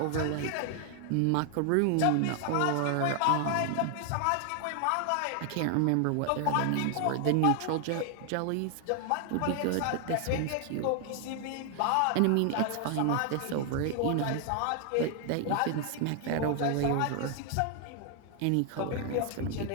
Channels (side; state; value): both; different; correlation 0.00